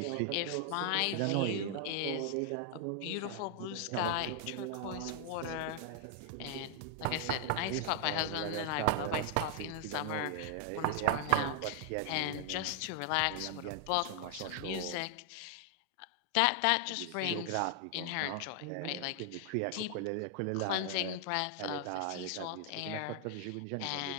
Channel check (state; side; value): different; both; correlation 0.00